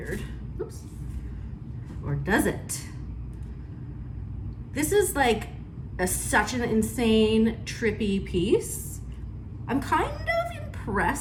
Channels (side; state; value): both; identical; correlation 1.00